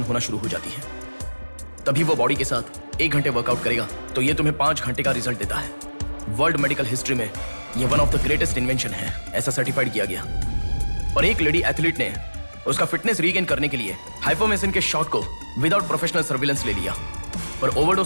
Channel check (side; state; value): both; inverted; correlation -1.00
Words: होना शुरू हो जाती है। तभी वो बॉडी के साथ 1 घंटे वर्कआउट करेगा तो ये तुम्हें 5 घंटे का रिजल्ट देता है। वर्ल्ड मेडिकल हिस्ट्री में ये one of the greatest invention है, ऐसा सर्टिफाइड किया गया। और एक लेडी एथलीट ने उसका फिटनेस रीगेन करने के लिए हाइपोमेसिन के शॉट को विदाउट प्रोफेशनल सर्विलेंस ले लिया, पर